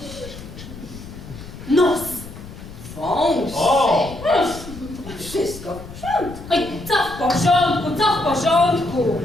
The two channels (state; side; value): noise; left; rumble, 14 dB below the sound